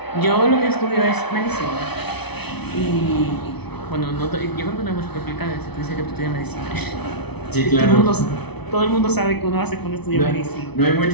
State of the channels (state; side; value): late; right; 0.99 ms